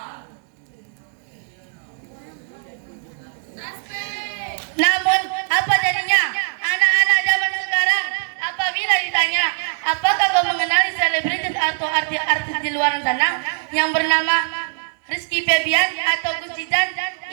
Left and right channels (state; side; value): silent; left; digital silence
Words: Namun apa jadinya anak-anak zaman sekarang apabila ditanya apakah kau mengenali selebritis atau artis di luar sana yang bernama Rizky Febian atau Gus Jidan,